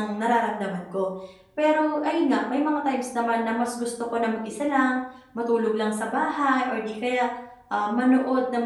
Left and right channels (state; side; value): identical; both; correlation 1.00